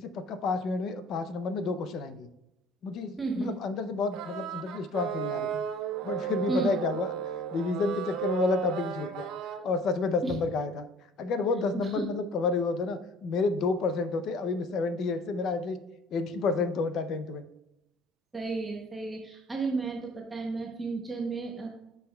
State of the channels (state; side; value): normal; both; correlation 0.51